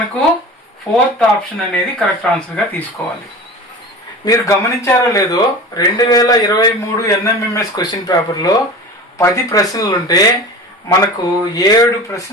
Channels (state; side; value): normal; both; correlation 0.35